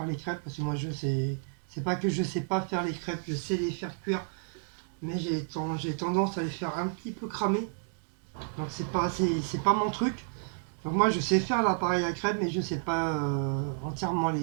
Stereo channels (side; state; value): left; silent; 57 dB below the other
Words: les crêpes, parce que moi c'est pas que je sais pas faire les crêpes, je sais les faire cuire, mais j'ai tendance à les faire un petit peu cramer. Donc c'est pas mon truc. Donc moi je sais faire l'appareil à crêpes, mais je sais pas entièrement